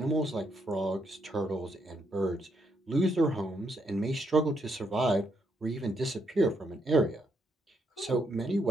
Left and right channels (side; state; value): both; normal; correlation 0.77